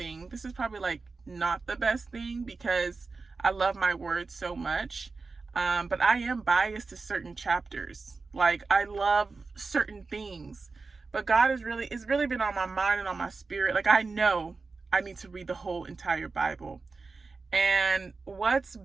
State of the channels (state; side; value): quieter; left; 4.2 dB